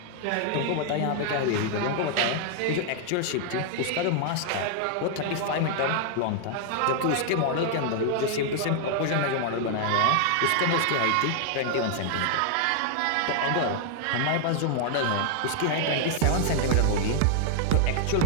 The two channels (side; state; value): both; different; correlation 0.00